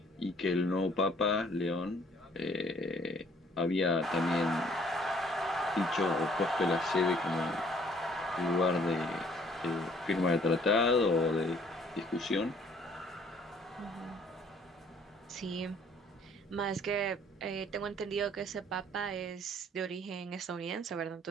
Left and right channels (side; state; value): both; normal; correlation 0.60